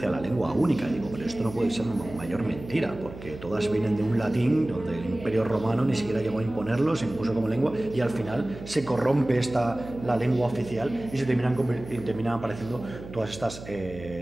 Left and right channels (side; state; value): right; noise; hum, 14 dB below the sound